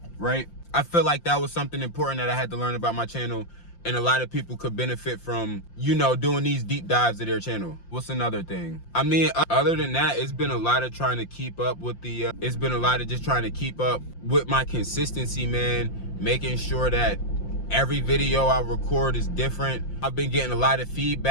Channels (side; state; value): right; late; 5.8 ms